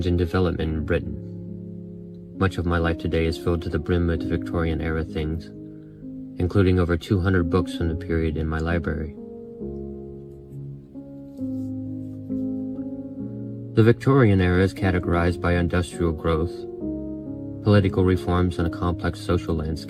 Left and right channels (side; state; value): both; identical; correlation 1.00